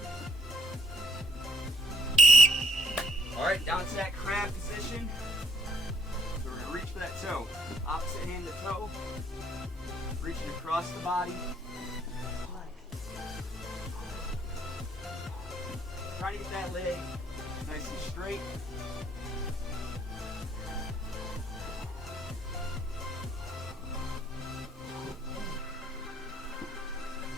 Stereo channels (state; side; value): normal; both; correlation 0.61